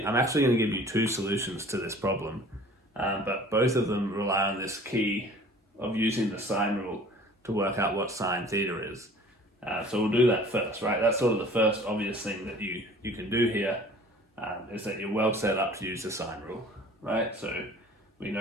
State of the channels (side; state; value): both; normal; correlation 0.48